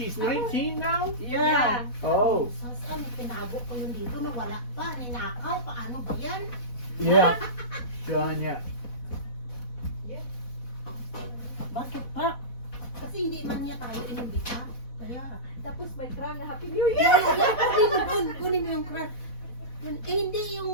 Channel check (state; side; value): late; right; 4.1 ms